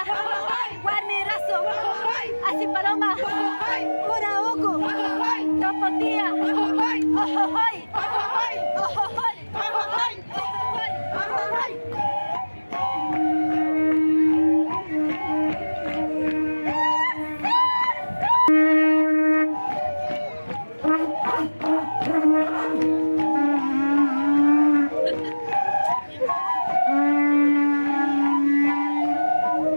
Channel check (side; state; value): both; inverted; correlation -1.00